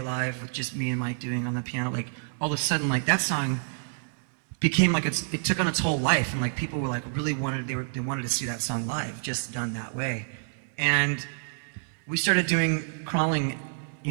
live with just me and Mike doing on the piano, like all of a sudden like that song became like it took on its whole life, and like people were like really they wanted to see that song live, just done that way. And we started doing Crawling,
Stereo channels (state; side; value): silent; left; digital silence